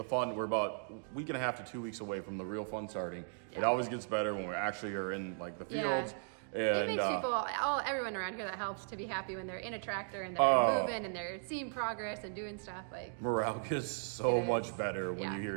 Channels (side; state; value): left; silent; digital silence